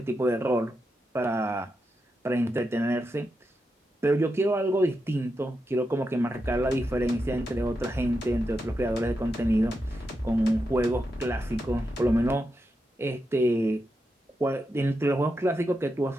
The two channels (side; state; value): both; normal; correlation 0.86